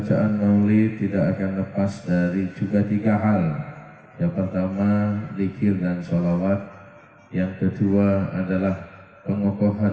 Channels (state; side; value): identical; both; correlation 1.00